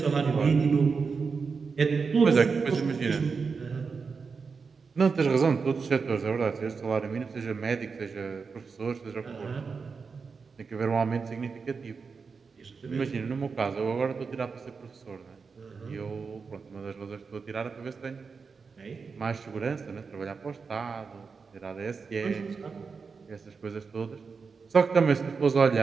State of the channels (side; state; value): left; quieter; 5.1 dB